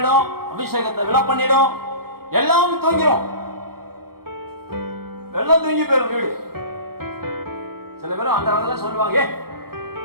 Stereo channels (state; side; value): late; left; 0.94 ms